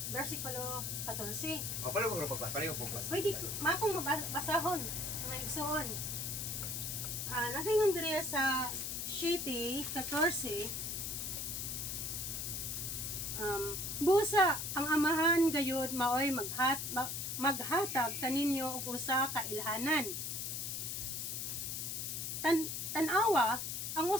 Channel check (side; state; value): left; noise; hiss, 3 dB below the sound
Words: versikulo 14. O paano ko pagbasa? Pareho po ba? Pwede makong mabasahon nga igsoon. Nagayon diri sa 7:14, busa ang amahan gayud maoy maghatag kaninyo og usa ka ilhanan. Tanawa ang